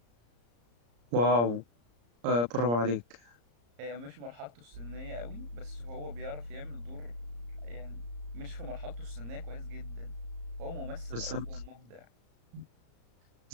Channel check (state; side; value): late; left; 34 ms